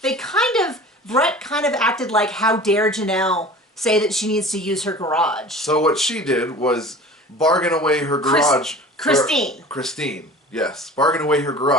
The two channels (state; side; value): normal; both; correlation 0.41